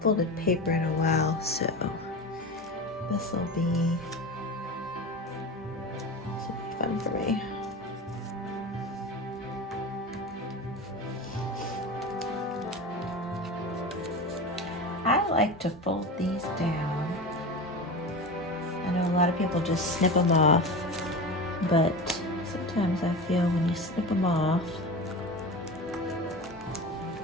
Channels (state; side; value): normal; both; correlation 0.28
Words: folded paper in a while, so this will be fun for me. I like to fold these down. I know a lot of people just snip them off, but sometimes I feel when you snip them off